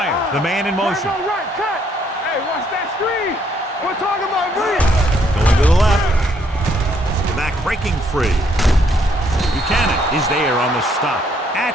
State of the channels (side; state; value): both; normal; correlation 0.69